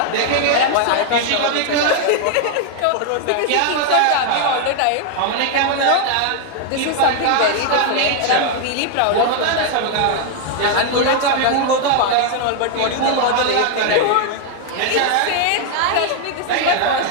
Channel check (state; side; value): different; both; correlation 0.00